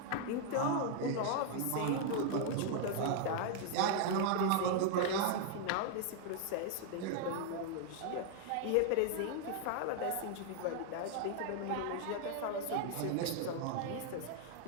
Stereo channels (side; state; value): both; different; correlation 0.00